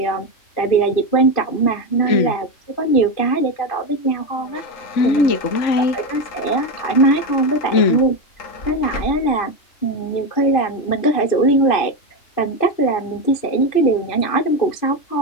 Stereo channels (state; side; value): late; right; 2.6 ms